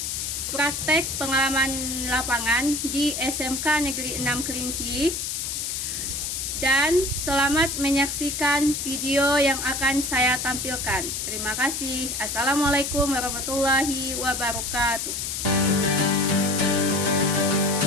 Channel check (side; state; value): left; noise; hiss, 3 dB below the sound